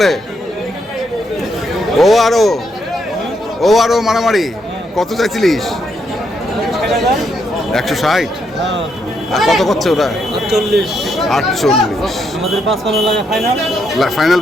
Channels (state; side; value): normal; both; correlation 0.77